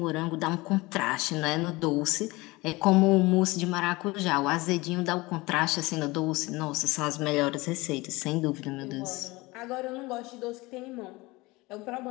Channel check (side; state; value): right; quieter; 22.2 dB